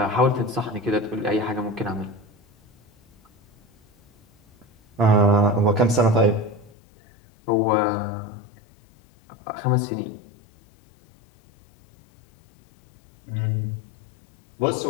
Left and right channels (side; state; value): right; drops out; at 6.7 s